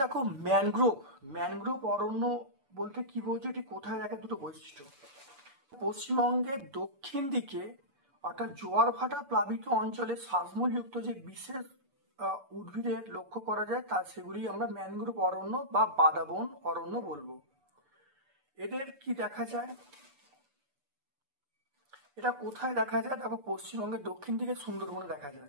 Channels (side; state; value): left; late; 6.9 ms